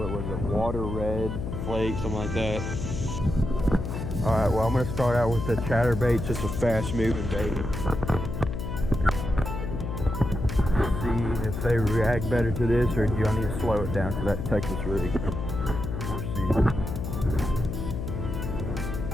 was it, water red flake, something like that. All right, well, I'm gonna start out with the chatterbait, just a fast moving bait. See if they react better to this, or do I need to slow it down to that Texas rig? We'll see.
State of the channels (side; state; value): left; noise; hum, 4 dB below the sound